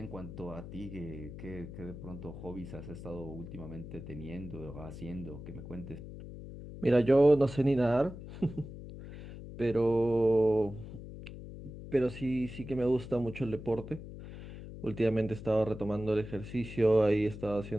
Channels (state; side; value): noise; left; hum, 12 dB below the sound